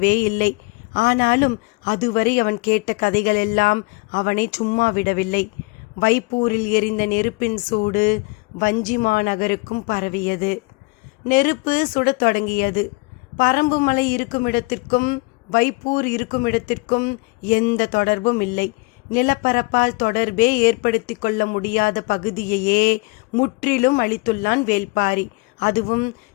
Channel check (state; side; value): quieter; right; 27.5 dB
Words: இல்லை. ஆனாலும் அதுவரை அவன் கேட்ட கதைகளெல்லாம் அவனை சும்மா விடவில்லை. வைப்பூரில் எரிந்த நெருப்பின் சூடு வஞ்சிமா நகருக்கும் பரவியது. நெருப்பு சுடத் தொடங்கியது. பரம்புமலை இருக்குமிடத்திற்கும் வைப்பூர் இருக்குமிடத்திற்கும் எந்த தொடர்பும் இல்லை. நிலப்பரப்பால் தொடர்பே ஏற்படுத்தி கொள்ள முடியாத பகுதியையே முற்றிலும் அழித்துள்ளான் வேள்பாரி. அதுவும்